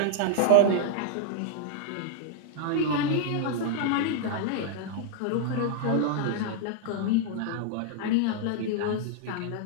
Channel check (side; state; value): both; different; correlation -0.01